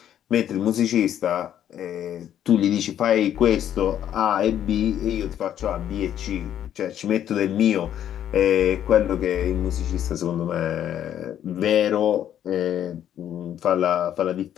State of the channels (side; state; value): right; quieter; 10.5 dB